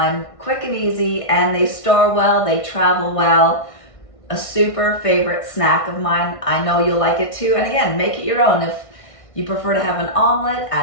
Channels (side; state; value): right; late; 1.6 ms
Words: quick and easy, and they store well, they travel well. A super favorite snack of mine. I know you'll like it too. And again, make it your own. If you prefer to have an omelet,